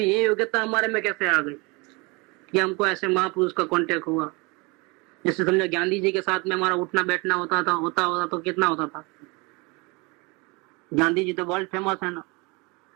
ये योग्यता हमारे में कैसे आ गई कि हमको ऐसे महापुरुष का कांटेक्ट हुआ। जैसे समझो गांधी जी के साथ में हमारा उठना बैठना होता तो कितना होता था। गांधी जी तो वर्ल्ड फेमस है ना,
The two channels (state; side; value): quieter; left; 27.5 dB